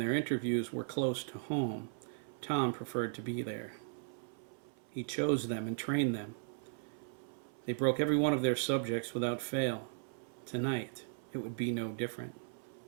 interviews were close to home, Tom preferred to be there. He chose them and trained them. They broke every one of their subjects without fail. Tonight, it would be no different.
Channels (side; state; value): left; silent; 53 dB below the other